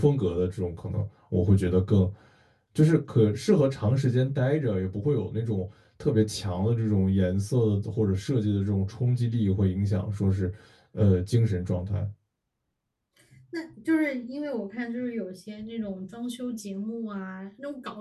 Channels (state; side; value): identical; both; correlation 1.00